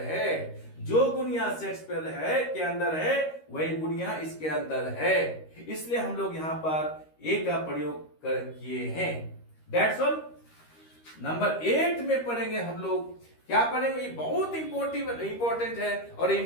जो गुण यहां शेक्सपियर है के अंदर है वही गुण यहां इसके अंदर है। इसलिए हम लोग यहां पर ए का प्रयोग किए हैं। That's all। नंबर 8 में पढ़ेंगे हम लोग। क्या पढ़ेंगे, ये बहुत इंपॉर्टेंट है और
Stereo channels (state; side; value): late; right; 13 ms